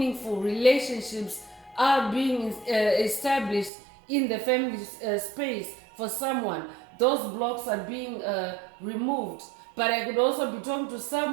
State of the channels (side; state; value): left; drops out; at 3.7 s